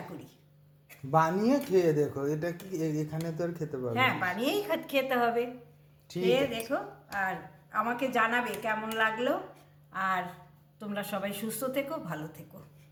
করি। বানিয়ে খেয়ে দেখো, এটা কি এখানে তো আর খেতে পারবে হ্যাঁ, না। বানিয়েই খেতে হবে। ঠিক খেয়ে আছে। দেখো আর আমাকে জানাবে কেমন লাগলো। আর তোমরা সবাই সুস্থ থেকো, ভালো থেকো।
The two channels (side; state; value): both; identical; correlation 1.00